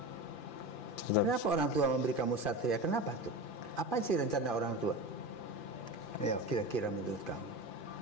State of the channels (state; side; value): late; right; 2.5 ms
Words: Kenapa orang tua memberi kamu satria? Kenapa tuh? Apa sih rencana orang tua? Ayo, kira-kira menurut kamu.